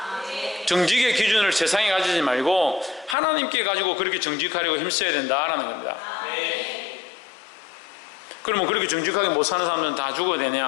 정직의 기준을 세상에 가지지 말고 하나님께 가지고 그렇게 정직하려고 힘써야 된다라는 겁니다. 그러면 그렇게 정직하게 못 사는 사람들은 다 죽어야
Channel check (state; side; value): drops out; right; at 3.2 s